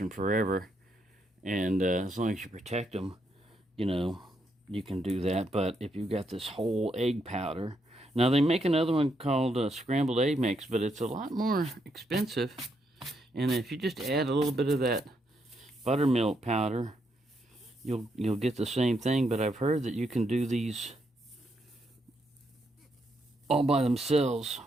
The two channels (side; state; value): both; normal; correlation 0.78